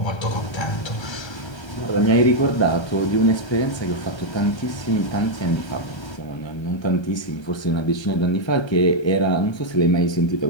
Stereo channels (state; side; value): late; right; 1.3 ms